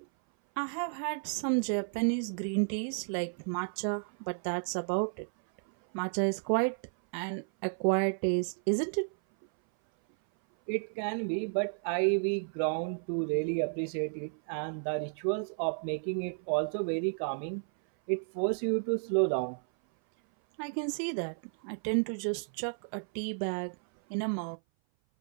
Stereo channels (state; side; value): silent; left; 56 dB below the other